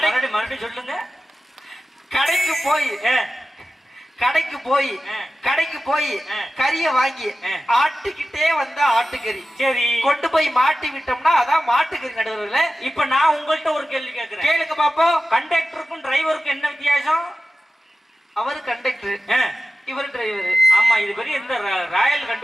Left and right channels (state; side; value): normal; both; correlation 0.94